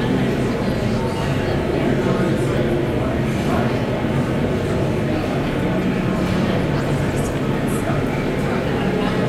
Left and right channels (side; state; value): both; identical; correlation 1.00